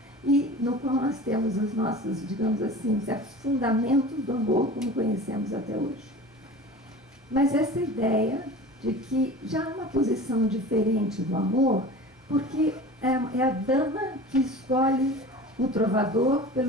e no qual nós temos os nossos, digamos assim, certos fundamentos do amor como conhecemos até hoje. Mas essa ideia de que já há uma posição diferente do amor, porque é a dama que escolhe o trovador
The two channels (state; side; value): normal; both; correlation 0.37